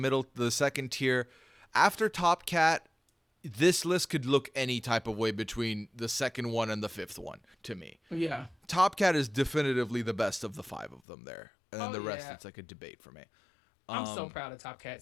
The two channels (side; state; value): right; drops out; at 11.0 s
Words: second tier. After Top Cat, this list could look any type of way between the second one and the fifth one to me. Yeah. Top Cat is definitively the best of the five of them there. And then Oh, the rest, yeah. it's like a debate for me. I'm so proud of Top